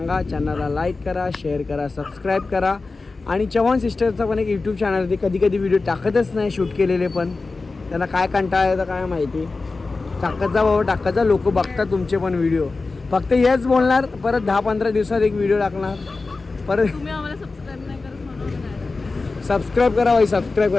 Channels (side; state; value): right; quieter; 3.8 dB